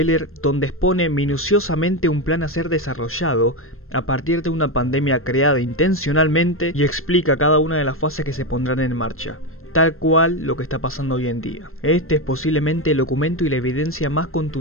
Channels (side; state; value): right; late; 0.62 ms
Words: donde expone minuciosamente un plan a ser desarrollado a partir de una pandemia creada intencionalmente y explica cada una de las fases que se pondrán en marcha, tal cual lo que está pasando hoy en día. Este es posiblemente el documento y la evidencia más